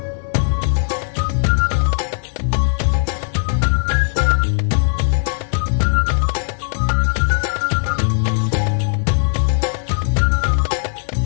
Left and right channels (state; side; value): silent; right; 64 dB below the other